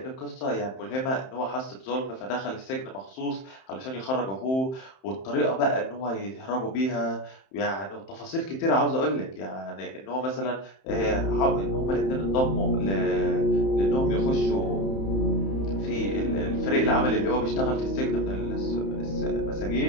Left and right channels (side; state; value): right; late; 31 ms